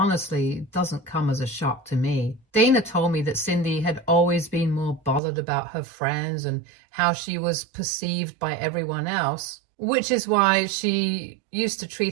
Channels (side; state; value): left; drops out; at 5.2 s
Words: doesn't come as a shock to me. Dana told me that Cindy had always been more bothered about her friends and how she was perceived by everyone else, which is why she used to